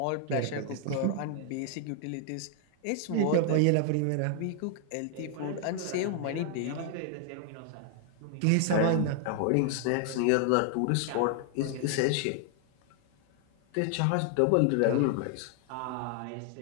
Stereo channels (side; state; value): both; different; correlation 0.00